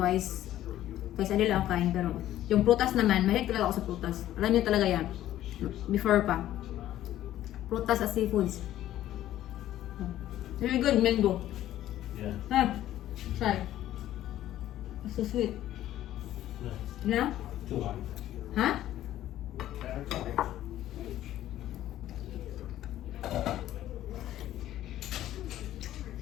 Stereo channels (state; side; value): quieter; right; 13.2 dB